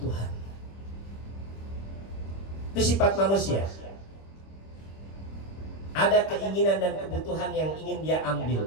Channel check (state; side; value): late; right; 25 ms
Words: Itu sifat manusia. Ada keinginan dan kebutuhan yang ingin dia ambil,